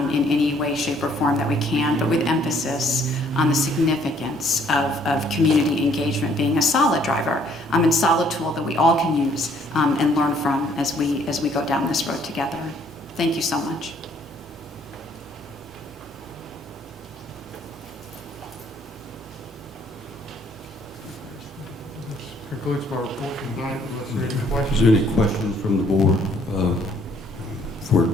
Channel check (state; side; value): normal; both; correlation 0.63